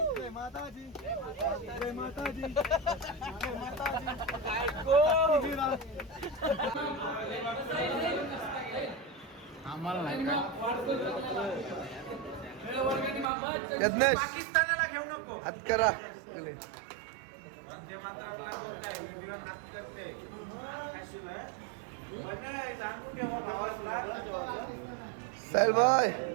जय माता दी, जय माता दी. आम्हाला नाही यज्ञेश पाकिस्तानाला घेऊ नको. हात करा. साहिल भाई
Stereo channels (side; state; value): left; drops out; at 13.2 s